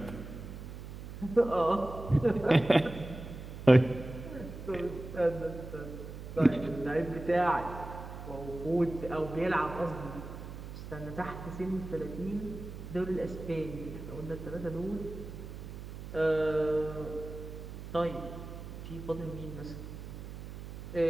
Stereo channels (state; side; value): noise; right; hum, 10 dB below the sound